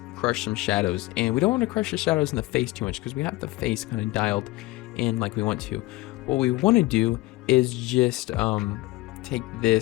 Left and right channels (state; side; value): quieter; right; 19.7 dB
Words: crush some shadows. And we don't want to crush the shadows in the face too much because we have the face kind of dialed in like we want to. What we want to do is just take